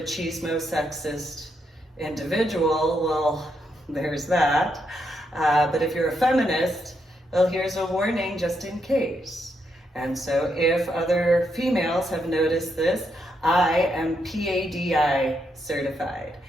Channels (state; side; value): normal; both; correlation 0.79